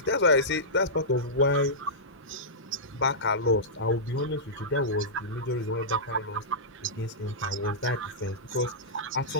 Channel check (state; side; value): normal; both; correlation -0.15